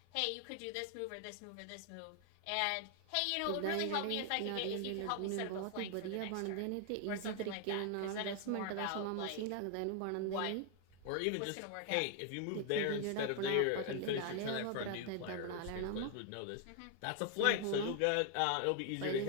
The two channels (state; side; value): different; both; correlation 0.00